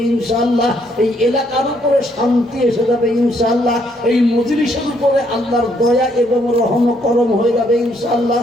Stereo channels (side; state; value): both; normal; correlation 0.70